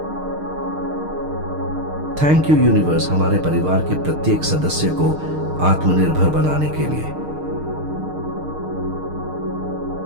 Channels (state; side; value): late; left; 6.5 ms